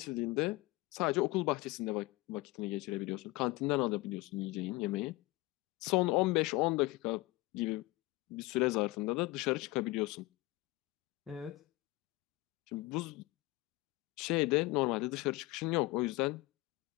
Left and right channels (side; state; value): right; quieter; 21.0 dB